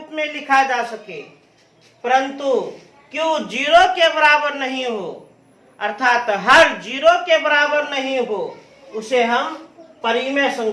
में लिखा जा सके, परंतु Q 0 के बराबर नहीं हो, अर्थात हर 0 के बराबर नहीं हो, उसे हम परिमेय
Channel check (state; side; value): identical; both; correlation 1.00